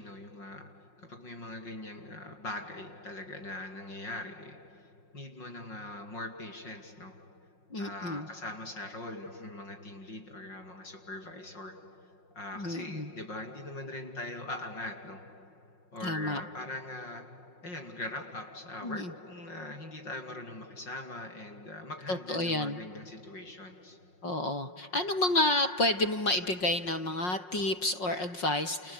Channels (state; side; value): late; right; 5.5 ms